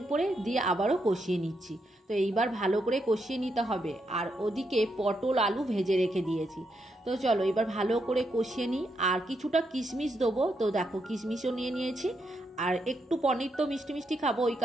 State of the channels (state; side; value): normal; both; correlation 0.81